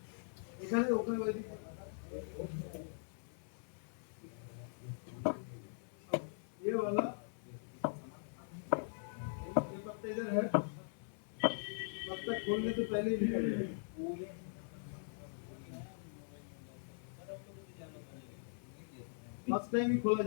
এখানে ওখানে ওইদিকে ये वाला ये पत्ता इधर है, पत्ता खोलने से पहले ही निकल जाएगा, फर्स्ट टाइम ही खोला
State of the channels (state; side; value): silent; right; 50 dB below the other